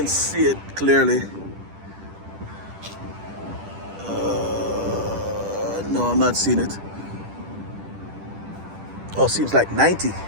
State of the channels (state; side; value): late; left; 10 ms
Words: see it clearly. No, I'm not seeing it. Oh, seems like 90